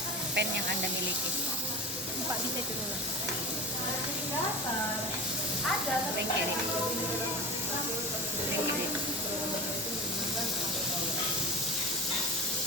pan yang Anda miliki. Pak bisa itu dulu. Pan kiri. Pan kiri.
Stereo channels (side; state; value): both; normal; correlation 0.31